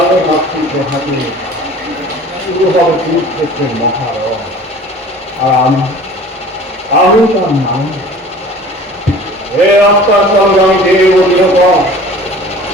মাতৃকে হাতে শুরু হবে কুরুক্ষেত্রের মহারণ। আর আমি তার নাম হে আত্মার সঙ্গে আমি দেব নিরূপণ।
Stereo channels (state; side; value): normal; both; correlation 0.45